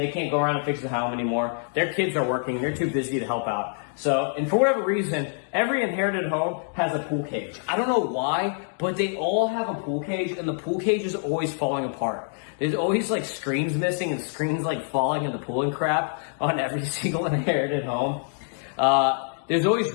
can't go around and fix the home anymore. Their kids are working, they're too busy to help out. So, and for whatever reason, every inherited home has a pool cage. I don't know why, but they all have a pool cage, and the pool cage is always falling apart. There's always like screens missing and screens like falling in the pool and crap on every single inherited home. There's always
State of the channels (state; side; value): silent; right; digital silence